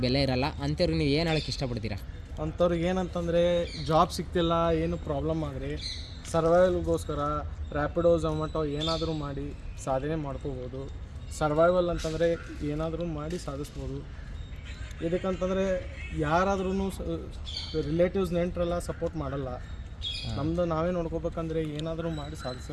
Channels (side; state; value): both; identical; correlation 1.00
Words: ಬೆಲೆ ಇರಲ್ಲ. ಅಂಥವ್ರಿಗೆ ನೀವು ಏನು ಹೇಳೋಕ್ಕೆ ಇಷ್ಟಪಡ್ತೀರಾ? ಅಂಥವ್ರಿಗೆ ಏನಂತಂದರೆ ಜಾಬ್ ಸಿಗ್ತಿಲ್ಲ, ಏನು ಪ್ರಾಬ್ಲಮ್ ಆದರೆ ಸರ್ವೈವಲ್ಗೋಸ್ಕರ ರ್ಯಾಪಿಡೋ ಝೊಮ್ಯಾಟೊ ಏನಾದರೂ ಮಾಡಿ ಸಾಧನೆ ಮಾಡ್ಕೋಬೋದು. ಸರ್ವೈವಲ್ ಅಂತಂದರೆ ಏನಾದರೂ ಮಾಡಿ ಸಾಧಿಸ್ಬೋದು. ಇದಕ್ಕಂತಂದರೆ ಯಾರಾದ್ರೂ ರಿಲೇಟಿವ್ಸ್ ನೆಂಟರೆಲ್ಲ ಸಪೋರ್ಟ್ ಮಾಡಲ್ಲ. ನಮ್ಮದು ನಾವೇ ನೋಡ್ಕೋಬೇಕಂದ್ರೆ ಏನಾದರೂ ಮಾಡಿ ಸಾಧಿಸ.